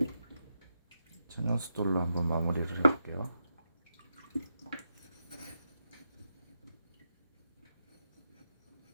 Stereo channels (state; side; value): inverted; both; correlation -0.85